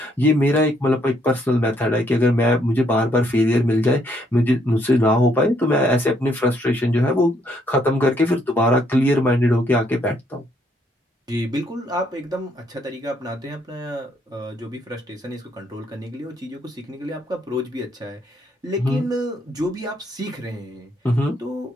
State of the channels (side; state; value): both; normal; correlation 0.70